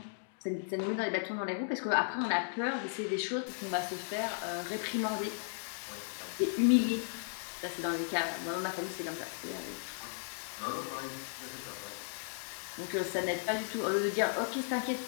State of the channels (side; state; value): right; silent; digital silence